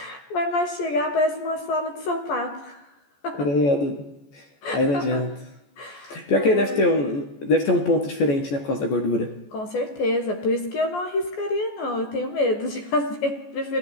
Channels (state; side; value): late; right; 14 ms